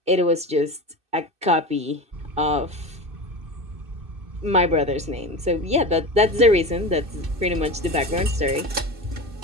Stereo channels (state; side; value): late; left; 2.6 ms